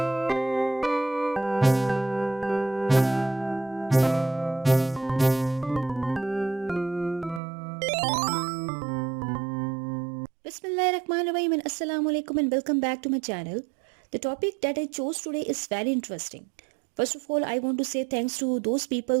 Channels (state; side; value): drops out; left; at 7.4 s